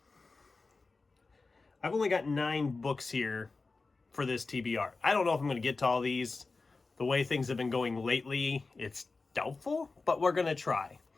I've only got 9 books here for this TBR. I don't know if I'm going to get to all these. The way things have been going lately, it's doubtful, but we're going to try.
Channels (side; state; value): right; quieter; 3.9 dB